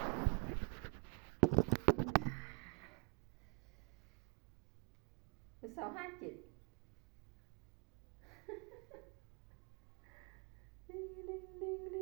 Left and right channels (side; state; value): left; quieter; 32.3 dB